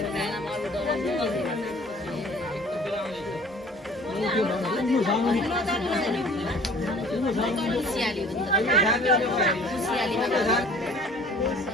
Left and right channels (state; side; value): normal; both; correlation 0.50